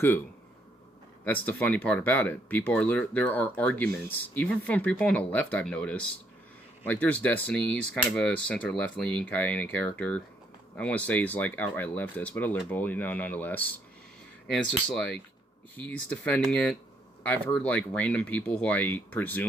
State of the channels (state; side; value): normal; both; correlation 0.71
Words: That's the funny part about it. People are there are arguments, even from people on the left. I've noticed, like there's Destiny. He's kind of a center left leaning kind of character. I want to say he's like outright leftist, but a liberal, nonetheless. And it's just like he's defending it. I've heard like random people who I